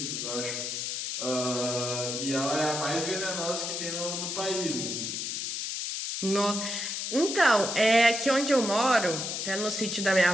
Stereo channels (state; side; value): noise; left; hiss, 3 dB below the sound